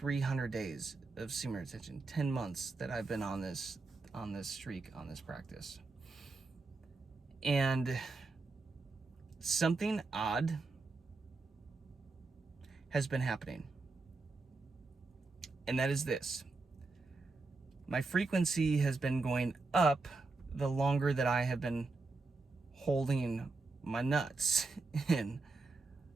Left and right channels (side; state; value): left; quieter; 3.7 dB